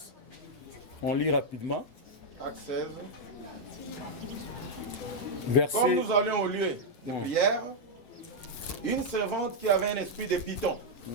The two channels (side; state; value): right; late; 8.1 ms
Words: on lit rapidement. Actes 16. Verset... Comme nous allions au lieu de prière, une servante qui avait un esprit de python